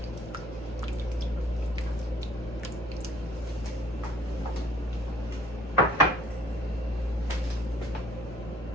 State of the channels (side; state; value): both; normal; correlation 0.57